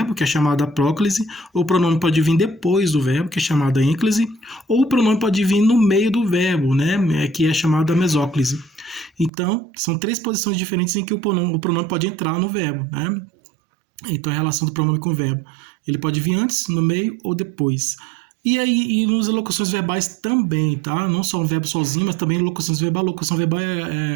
que é chamada próclise, ou o pronome pode vir depois do verbo, que é chamada ênclise, ou o pronome pode vir no meio do verbo, né? Que é chamada mesóclise. Então, são três posições diferentes em que o pronome pode entrar no verbo, né? Então, a relação do pronome com o verbo. Ele pode vir antes, no meio ou depois. E aí, e nas locuções verbais também, tá? Não só o verbo sozinho, mas também locuções verbais. Locução verbal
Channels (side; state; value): left; drops out; at 9.3 s